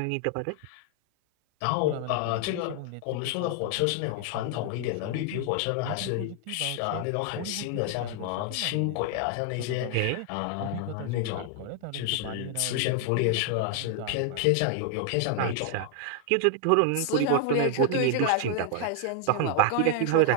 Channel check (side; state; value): both; different; correlation 0.00